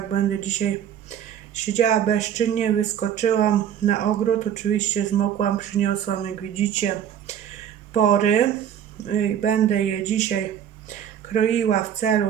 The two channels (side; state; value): left; quieter; 9.6 dB